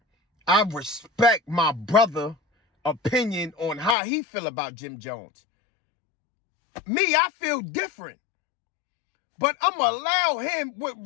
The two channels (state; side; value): drops out; right; at 4.0 s